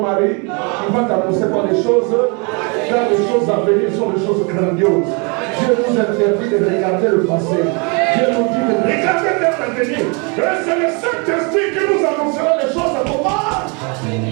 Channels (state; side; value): quieter; left; 32.8 dB